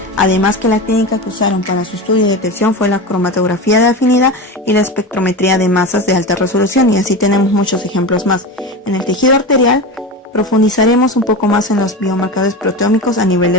Además que la técnica que usaron para su estudio y detección fue la cromatografía de afinidad y la espectrometría de masas de alta resolución, y así tenemos muchos ejemplos más. En el tejido arterial profundizaremos un poco más en los biomarcadores proteómicos a nivel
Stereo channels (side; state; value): both; normal; correlation 0.24